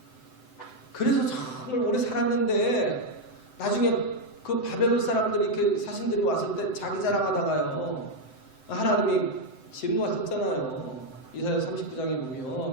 그래서 정말 오래 살았는데 나중에 그 바벨론 사람들이 이렇게 사신들이 왔을 때 자기 자랑하다가요, 하나님이 진노하셨잖아요. 이사야 39장에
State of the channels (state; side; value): late; right; 7.8 ms